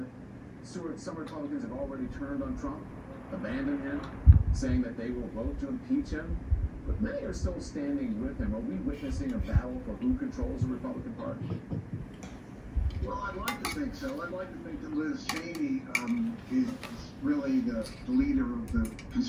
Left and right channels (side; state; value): both; identical; correlation 1.00